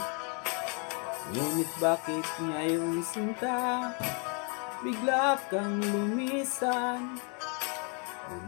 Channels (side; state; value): right; quieter; 37.3 dB